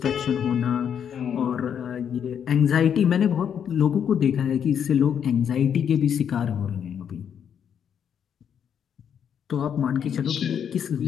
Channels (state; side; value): quieter; right; 8.3 dB